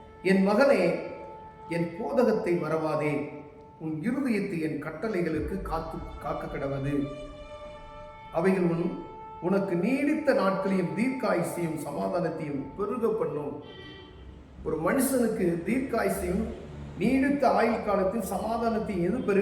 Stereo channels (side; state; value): both; identical; correlation 1.00